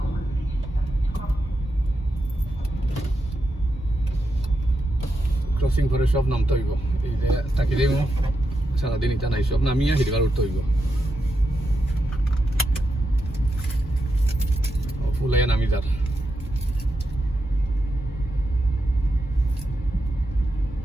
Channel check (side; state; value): both; normal; correlation 0.86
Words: ক্রসিং করে সব নামতে হইব এই যে তাকি দেব সারাদিন এটা নাই সব নামিয়ে হিরবার উঠতে হইব ফুলাই নামি যার